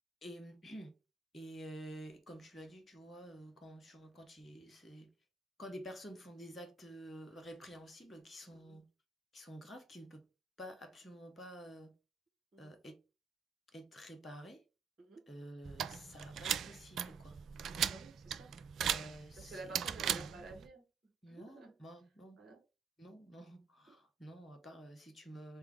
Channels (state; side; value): quieter; left; 5.8 dB